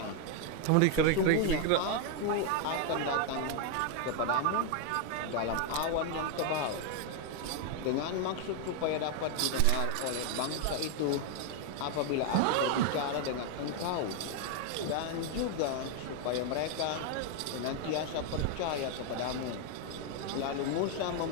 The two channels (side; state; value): both; different; correlation 0.01